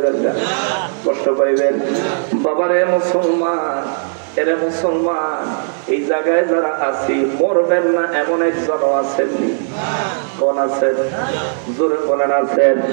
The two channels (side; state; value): left; silent; digital silence